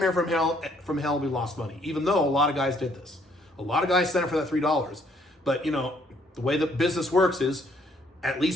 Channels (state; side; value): normal; both; correlation 0.66